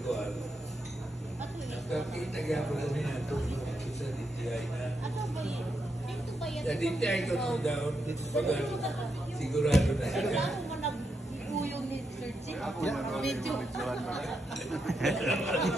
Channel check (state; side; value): normal; both; correlation 0.82